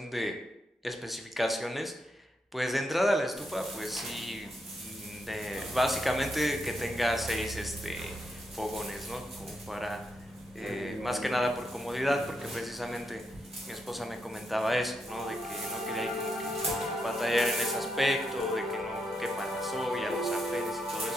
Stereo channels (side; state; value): both; normal; correlation 0.81